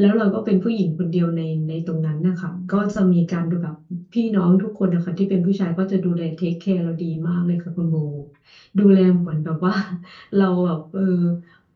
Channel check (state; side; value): identical; both; correlation 1.00